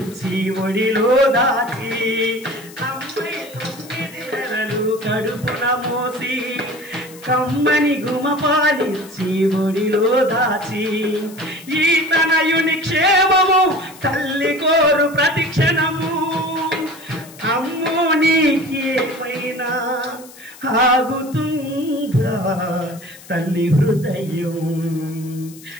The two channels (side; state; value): left; noise; hiss, 20 dB below the sound